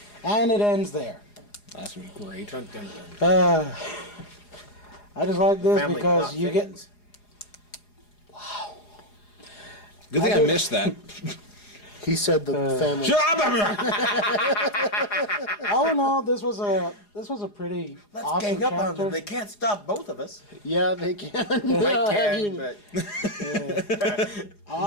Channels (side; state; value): right; late; 4.8 ms